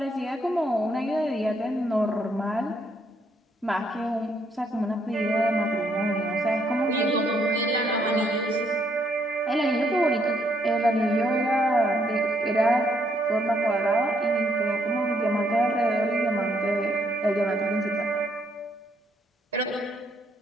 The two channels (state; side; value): normal; both; correlation 0.72